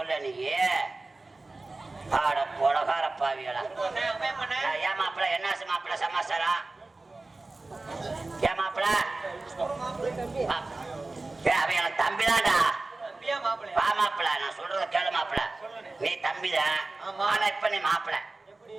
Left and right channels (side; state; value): left; quieter; 3.2 dB